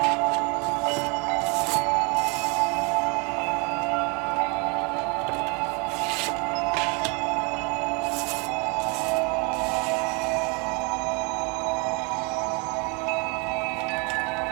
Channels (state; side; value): quieter; left; 31.4 dB